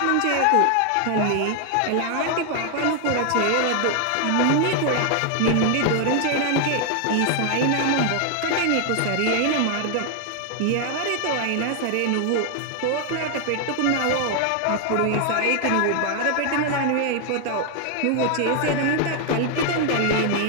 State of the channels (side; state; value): both; different; correlation 0.00